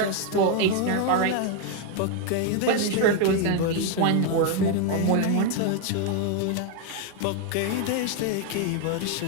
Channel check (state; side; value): different; both; correlation 0.01